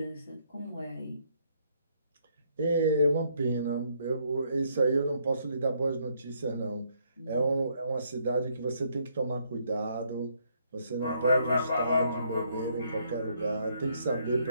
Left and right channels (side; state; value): both; inverted; correlation -0.70